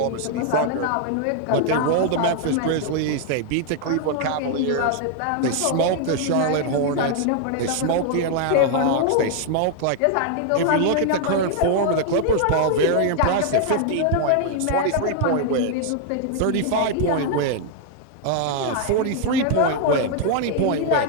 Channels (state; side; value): different; both; correlation 0.00